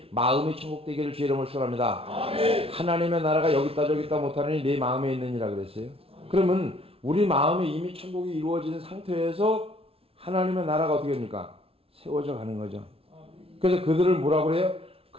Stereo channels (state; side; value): late; left; 0.27 ms